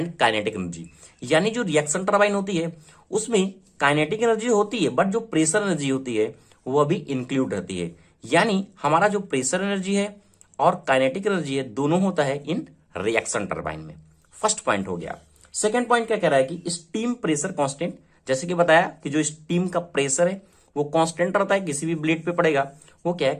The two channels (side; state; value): both; identical; correlation 1.00